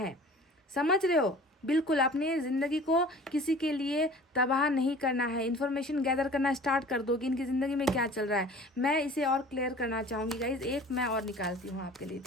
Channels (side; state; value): both; normal; correlation 0.45